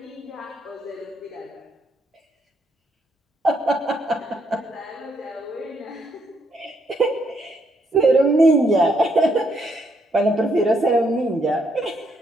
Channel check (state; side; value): normal; both; correlation 0.74